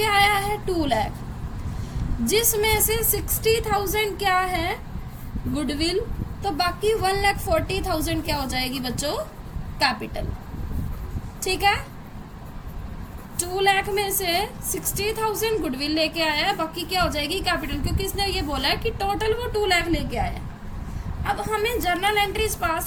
आया है? 2 लाख, जिसमें से 60,000 क्या है? गुडविल। तो बाकी 1,40,000 क्या हो जाएगी बच्चों? कैपिटल, ठीक है। 2 लाख में से 60,000 गुडविल लेके आया है, बाकी क्या हो जाएगी? कैपिटल, क्योंकि इसने ये बोला है कि टोटल वो 2 लाख लेके आया। अब हमें जर्नल एंट्रीज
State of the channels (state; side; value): identical; both; correlation 1.00